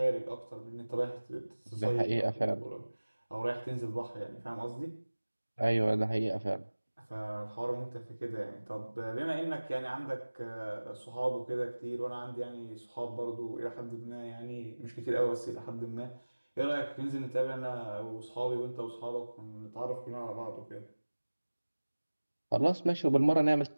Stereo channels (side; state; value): both; inverted; correlation -1.00